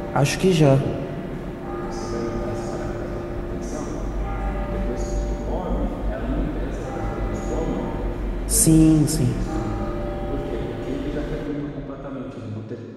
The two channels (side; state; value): both; identical; correlation 1.00